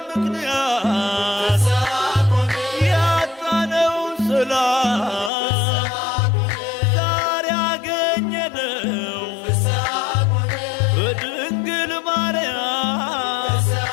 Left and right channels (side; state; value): right; drops out; at 5.3 s